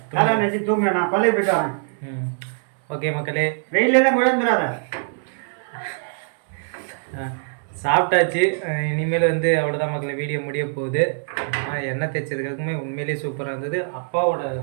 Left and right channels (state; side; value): silent; left; 63 dB below the other